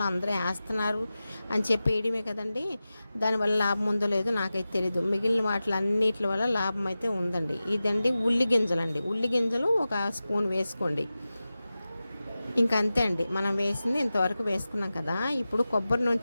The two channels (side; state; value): both; inverted; correlation -0.95